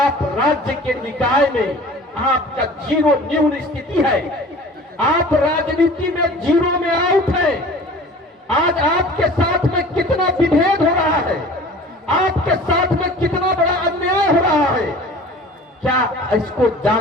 राज्य के निकाय में आपका जीरो न्यून स्थिति है। आप राजनीति में जीरो में आउट है। आज आपके साथ में कितना विभेद हो रहा है, आपके साथ में कितना बड़ा अन्याय हो रहा है, क्या इसको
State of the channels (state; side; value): normal; both; correlation 0.43